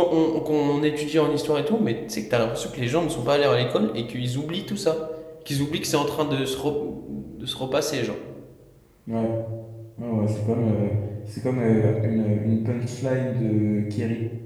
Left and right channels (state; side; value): identical; both; correlation 1.00